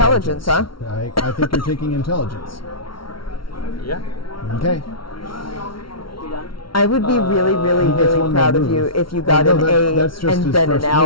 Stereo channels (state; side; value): late; right; 0.74 ms